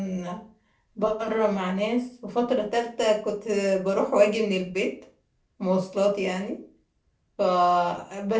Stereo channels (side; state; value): both; identical; correlation 1.00